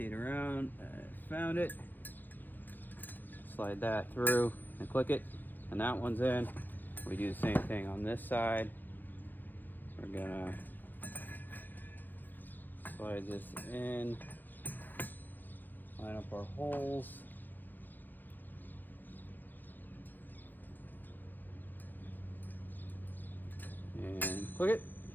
around, I found it. Slide that through and click it, and that one's in. We do the same thing on this side. We're gonna slide this in, line up our holes. And click it.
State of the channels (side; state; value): right; late; 0.091 ms